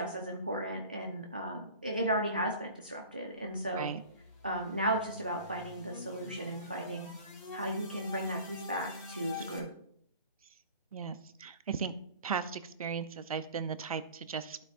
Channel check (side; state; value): both; inverted; correlation -0.42